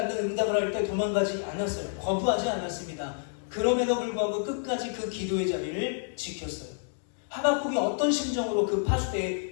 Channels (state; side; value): silent; right; digital silence